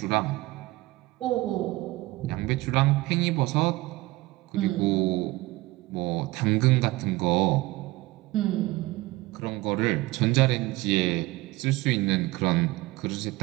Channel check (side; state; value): left; quieter; 19.9 dB